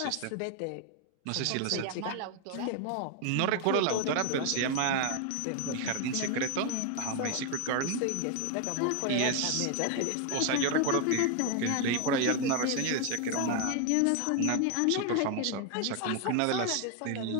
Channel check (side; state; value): both; different; correlation 0.01